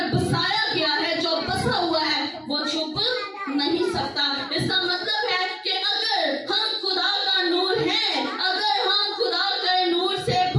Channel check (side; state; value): both; identical; correlation 1.00